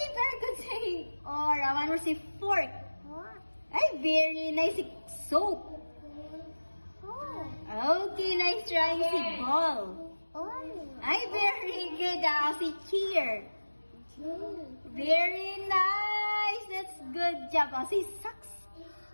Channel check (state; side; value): inverted; both; correlation -1.00